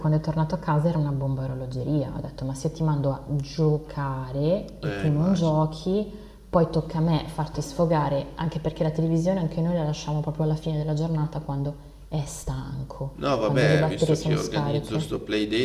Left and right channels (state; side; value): identical; both; correlation 1.00